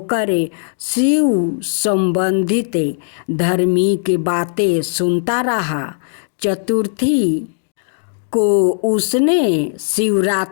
शिव संबंधित धार्मिक बातें सुनता रहा। चतुर्थी को उसने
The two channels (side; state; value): right; silent; digital silence